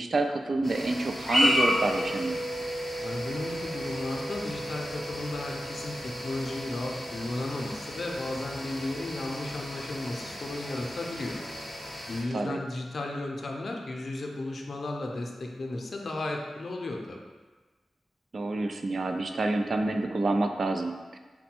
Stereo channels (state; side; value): normal; both; correlation 0.92